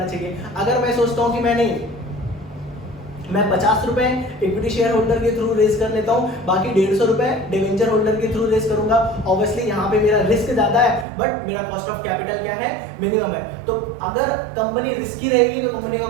चाहिए। अगर मैं सोचता हूँ कि मैं 50 रुपए इक्विटी शेयर होल्डर के थ्रू रेस कर लेता हूं, बाकी 150 रुपए डिवेंचर होल्डर के थ्रू रेस करूंगा, ऑब्वियसली यहाँ पे मेरा रिस्क ज्यादा है बट मेरा कॉस्ट ऑफ कैपिटल क्या है, मिनिमम है। तो अगर कंपनी रिस्की रहेगी तो कंपनी का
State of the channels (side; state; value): left; drops out; at 11.1 s